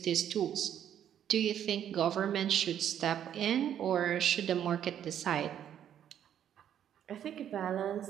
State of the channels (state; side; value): quieter; left; 9.9 dB